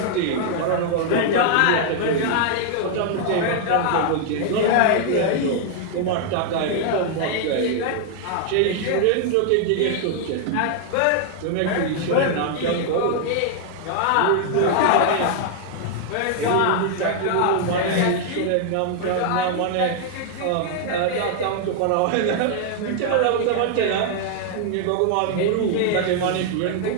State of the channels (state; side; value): different; both; correlation 0.00